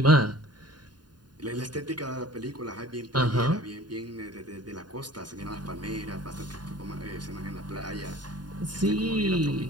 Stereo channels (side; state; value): left; late; 0.70 ms